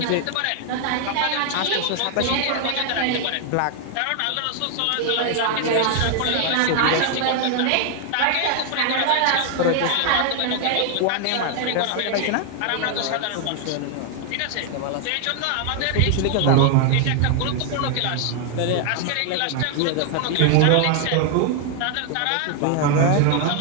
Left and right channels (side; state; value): both; different; correlation 0.00